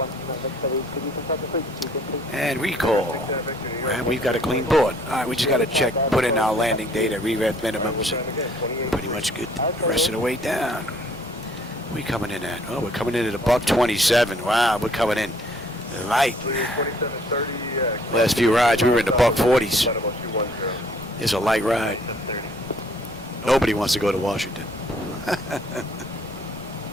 And recall. And we've got a clean board. Alright, we just got to check, put in our landing data, re-rev minimums, and pretty much good the rest of the way down. We coming in at? Oh, we're coming in at $127. Wow, we're coming in light. Last few rides we were in the $140s. It's a light ride. Nobody wants to go to Washington.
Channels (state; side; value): normal; both; correlation 0.60